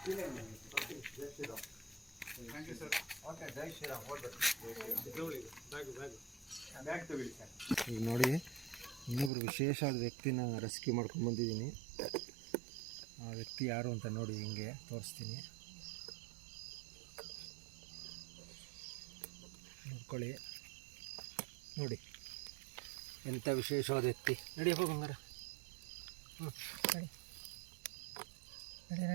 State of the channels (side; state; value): left; drops out; at 9.3 s